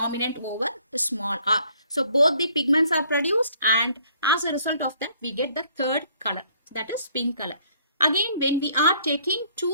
over the small r. So both the pigments are produced, and as a result of that, we get the third color, that is pink color. Again, when we are taking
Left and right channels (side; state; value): both; inverted; correlation -0.62